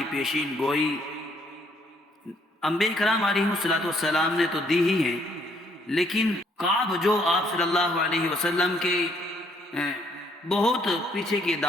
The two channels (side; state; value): both; normal; correlation 0.67